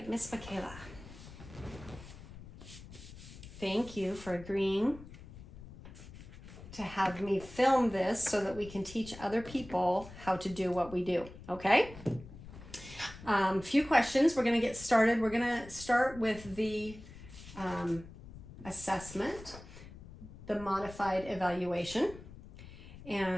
Miss Michaela. Thank you for agreeing to have me film this so that we can teach other people how to do what we do, okay? Few questions. We're going to get started. We're going to start with the assessment, the modified evaluation.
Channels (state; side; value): noise; left; rumble, 16 dB below the sound